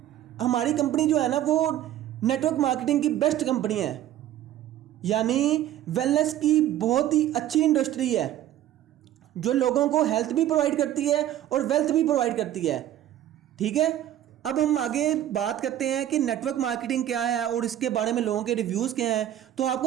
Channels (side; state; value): left; quieter; 12.3 dB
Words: हमारी कंपनी जो है ना वो नेटवर्क मार्केटिंग की बेस्ट कंपनी है, यानी वेलनेस की बहुत ही अच्छी इंडस्ट्री है जो लोगों को हेल्थ भी प्रोवाइड करती है और वेल्थ भी प्रोवाइड करती है, ठीक है। अब हम आगे बात करते हैं कि नेटवर्क मार्केटिंग क्या है और इसके बारे में लोगों के रिव्यूज़ क्या हैं। तो